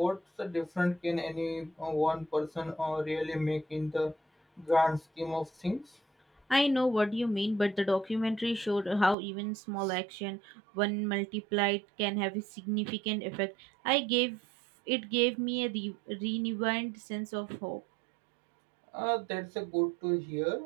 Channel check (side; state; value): left; drops out; at 9.2 s